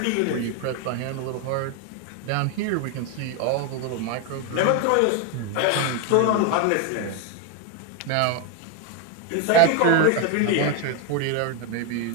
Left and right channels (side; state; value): both; different; correlation 0.01